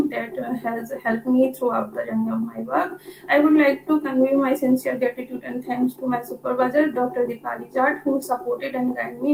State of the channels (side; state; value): both; identical; correlation 1.00